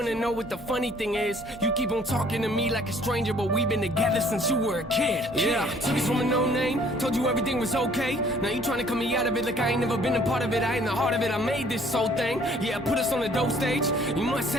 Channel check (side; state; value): both; normal; correlation 0.58